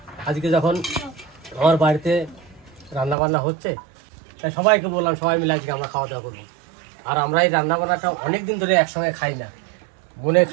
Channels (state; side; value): drops out; left; at 3.2 s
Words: আজকে যখন আমার বাড়িতে রান্নাবান্না হচ্ছে, তাই সবাইকে বললাম সবাই মিলে আজকে আমরা খাওয়া দাওয়া করবো। আর আমরা এই রান্নাবান্নাটা অনেক দিন ধরে একসঙ্গে খাই না। বোনে